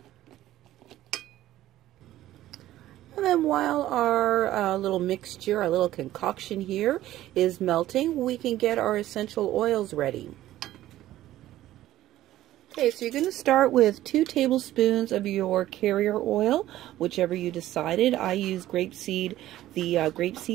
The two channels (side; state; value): left; quieter; 14.3 dB